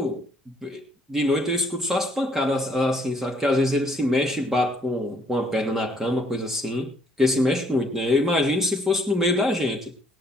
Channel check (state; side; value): normal; both; correlation 0.66